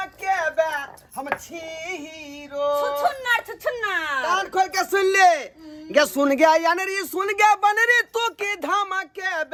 बे हम छी हीरो छुछुन्नर कान खोल के सुन ले गे सुन गे यान रे सुन गे बन रे तू की धमके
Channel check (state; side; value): identical; both; correlation 1.00